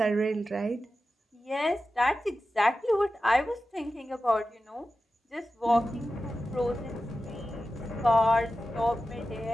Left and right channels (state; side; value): normal; both; correlation 0.93